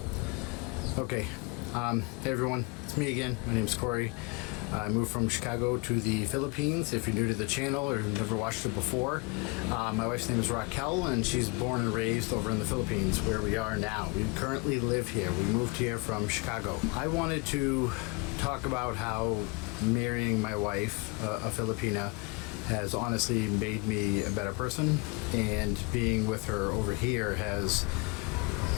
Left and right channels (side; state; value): right; quieter; 27.7 dB